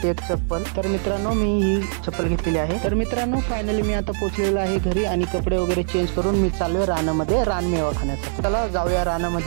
एक चप्पल. तर मित्रांनो, मी ही चप्पल घेतलेली आहे. तर मित्रांनो, फायनली मी आता पोहोचलेलो आहे घरी आणि कपडे वगैरे चेंज करून मी चाललोय रानामध्ये रानमेवा खाण्यासाठी. चला जाऊया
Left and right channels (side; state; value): left; silent; 55 dB below the other